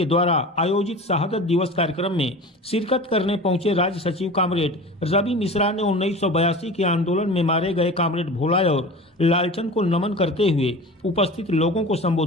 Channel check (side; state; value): both; normal; correlation 0.36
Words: द्वारा आयोजित शहादत दिवस कार्यक्रम में शिरकत करने पहुंचे राज्य सचिव कॉमरेड रवि मिश्रा ने 1982 के आंदोलन में मारे गए कॉमरेड भोला और लालचंद को नमन करते हुए उपस्थित लोगों को